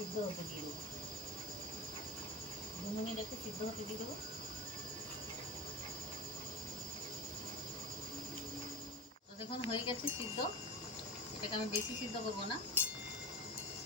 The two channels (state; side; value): normal; both; correlation 0.25